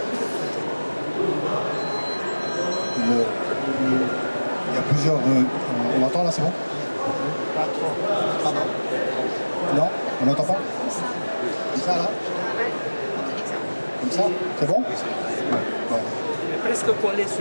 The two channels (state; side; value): inverted; both; correlation -1.00